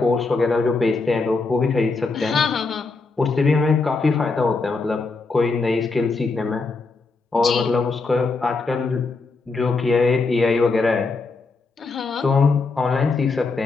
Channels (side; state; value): right; quieter; 4.0 dB